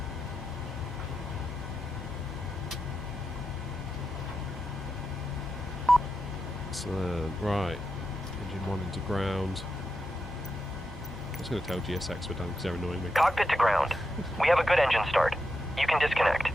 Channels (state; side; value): normal; both; correlation 0.87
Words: Excellent. Right. Engine 1 into ground. I was going to tell GSX we're done because they're annoying me. Cockpit to ground. We have a good engine start. You can disconnect.